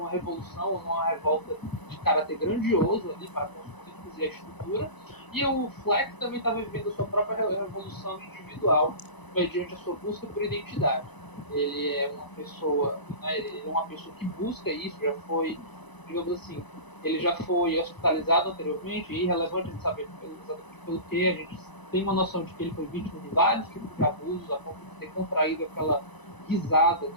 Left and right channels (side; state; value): right; late; 1.0 ms